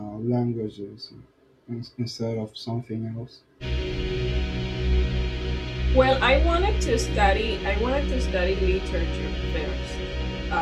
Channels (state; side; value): identical; both; correlation 1.00